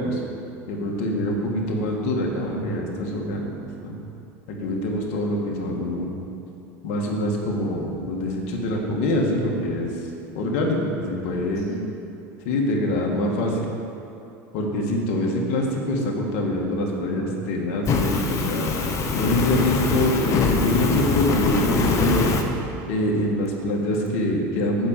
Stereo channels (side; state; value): both; normal; correlation 0.21